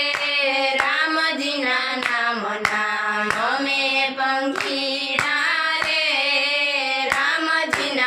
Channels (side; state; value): both; identical; correlation 1.00